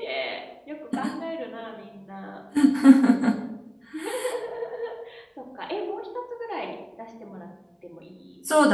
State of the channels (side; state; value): both; identical; correlation 1.00